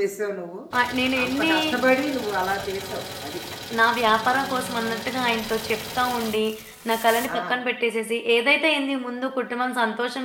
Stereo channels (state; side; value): identical; both; correlation 1.00